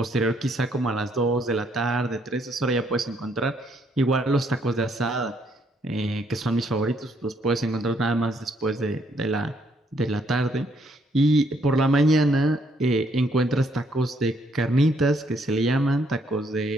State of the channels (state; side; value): normal; both; correlation 0.70